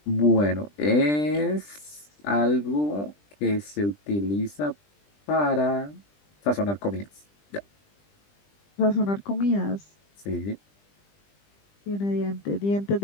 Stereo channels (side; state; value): right; late; 20 ms